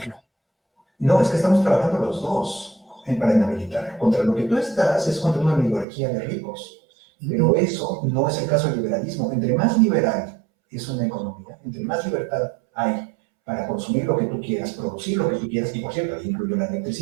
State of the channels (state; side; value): drops out; left; at 5.9 s